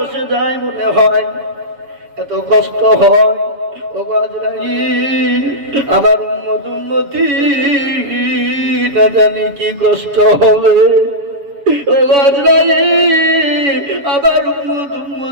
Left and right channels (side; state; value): left; late; 7.1 ms